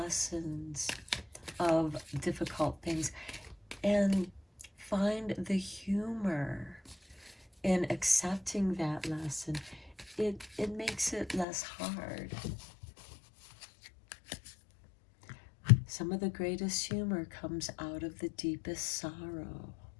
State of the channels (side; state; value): right; drops out; at 11.5 s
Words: of difficult things and find the humor in accepting that lesson, it makes it less hard. Some of the greatest humor comes out of the deepest sorrow.